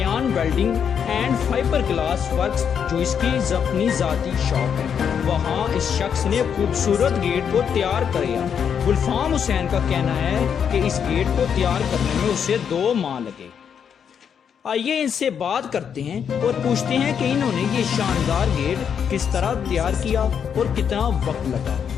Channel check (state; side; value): quieter; right; 7.6 dB